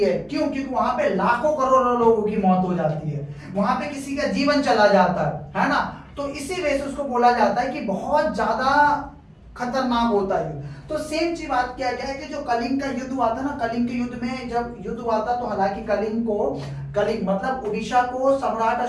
क्यों? क्योंकि वहां पे लाखों करोड़ों लोगों की मौत हो जाती है, वहां पे किसी का जीवन चला जाता है ना। तो इसी वजह से उसको बोला जाता है कि बहुत ज्यादा खतरनाक होता है युद्ध। तो सेम चीज बात किया गया है कि जो कलिंग का युद्ध हुआ था ना, कलिंग के युद्ध में जब युद्ध हुआ था तो हालांकि कलिंग मतलब उड़ीसा को सम्राट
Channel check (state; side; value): identical; both; correlation 1.00